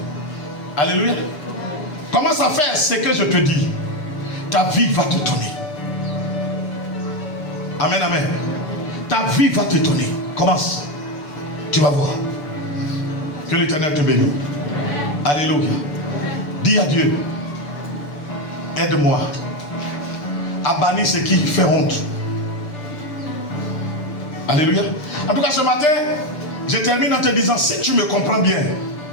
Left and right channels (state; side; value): late; right; 7.0 ms